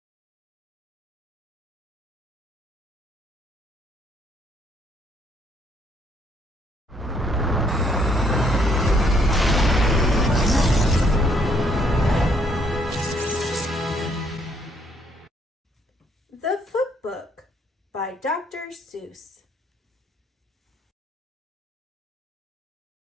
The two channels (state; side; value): normal; both; correlation 0.68